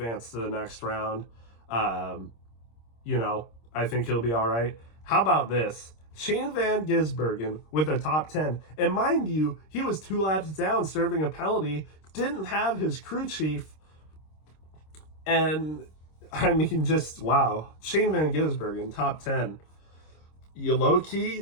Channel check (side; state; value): right; late; 26 ms